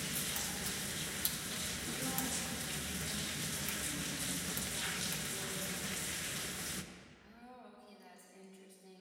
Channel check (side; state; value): both; identical; correlation 1.00